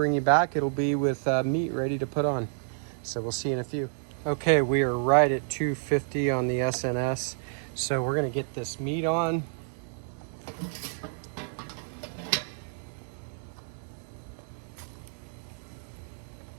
you back, it'll be with meat ready to put on. So we'll see you in a few. Okay, we are right at 250 on the SnS. So we're gonna get this meat on.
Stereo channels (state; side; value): silent; left; 58 dB below the other